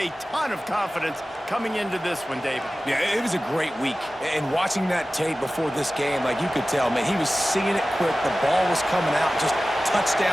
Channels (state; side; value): normal; both; correlation 0.96